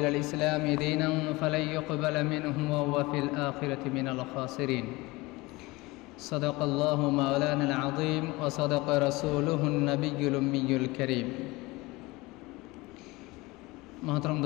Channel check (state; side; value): quieter; right; 22.2 dB